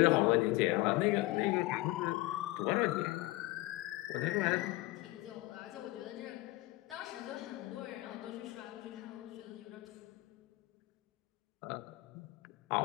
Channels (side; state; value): right; quieter; 19.2 dB